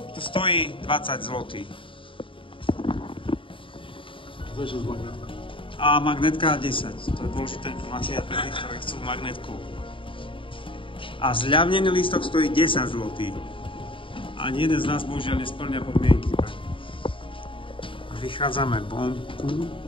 tu stojí 20 zlotých. A magnetka 10. To je dôležitá informácia pre tých, ktorí chcú magnetku. A zľavnený lístok stojí 10 zlotých. Ani jeden z nás bohužiaľ nesplňa podmienky. A vychádzame vonku,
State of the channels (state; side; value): late; right; 0.25 ms